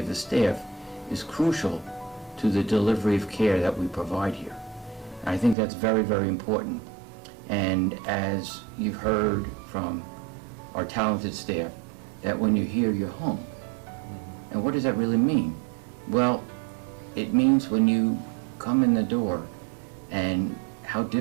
the staff is crucial to the delivery of care that we provide here. And I think that's very, very important. And as you've heard from our talented staff, that when you're here, you're home. And what does that really mean? Well, it means when you come in the door and how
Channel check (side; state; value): left; drops out; at 5.6 s